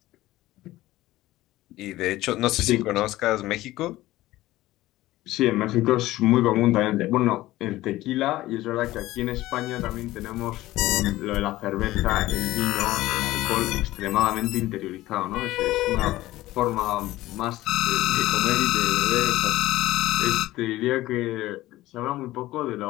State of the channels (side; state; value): right; quieter; 16.7 dB